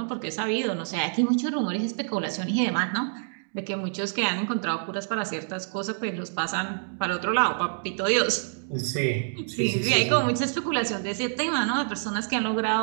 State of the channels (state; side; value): silent; left; digital silence